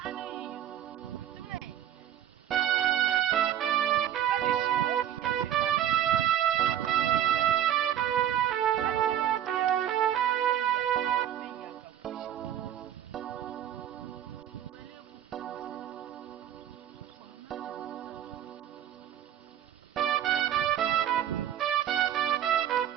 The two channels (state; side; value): quieter; left; 11.0 dB